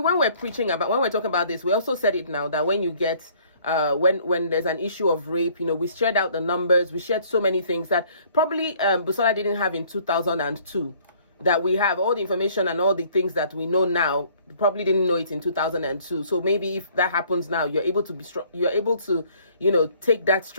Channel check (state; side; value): inverted; both; correlation -0.59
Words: we're talking about this, we also said it now that when you get. When there's an issue of rape, we shared out the numbers, we shared so many things that probably Busola didn't have in 2002, that we have all the information and all the things that we know now, probably didn't know it in 2002. So maybe if that happens now, you're able to be strong, you're able to, take that